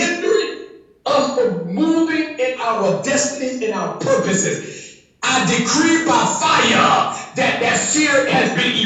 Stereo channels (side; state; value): both; identical; correlation 1.00